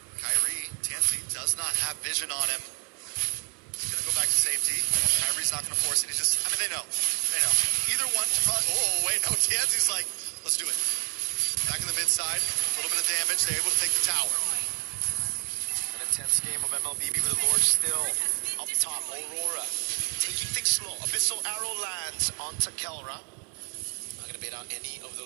Kyrie, TNZ does not have vision on him. He's going to go back to safety. Kyrie's not going to force it. He's just, I mean, they know. They know. Either one, oh, wait, no, TNZ's like, let's do it. Back in the mid side, a little bit of damage. They're able to take the tower. An intense game of MLBB with the Lord still up top. Aurora taking things slow. Abyssal Arrow lands onto Kelra. Not going to bait out any of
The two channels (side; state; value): left; quieter; 36.0 dB